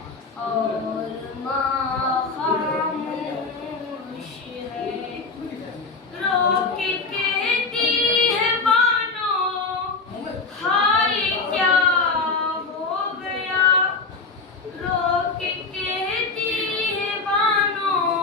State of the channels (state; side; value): quieter; right; 4.0 dB